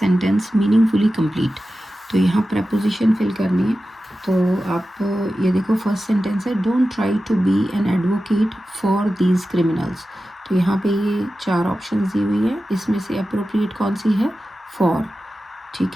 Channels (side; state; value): both; normal; correlation 0.93